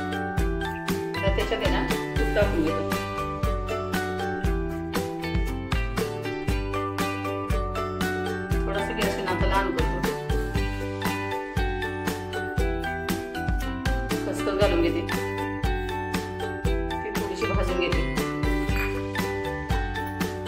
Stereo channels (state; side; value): identical; both; correlation 1.00